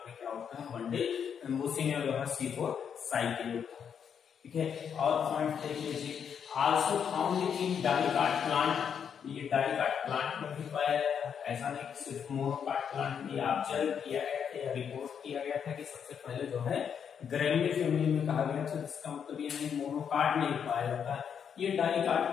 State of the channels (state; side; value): quieter; right; 7.6 dB